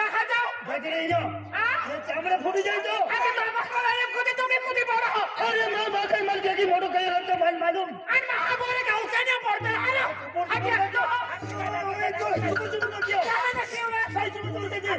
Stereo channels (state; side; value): identical; both; correlation 1.00